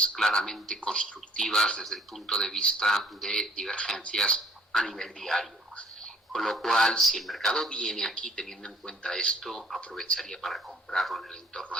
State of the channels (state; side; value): normal; both; correlation 0.57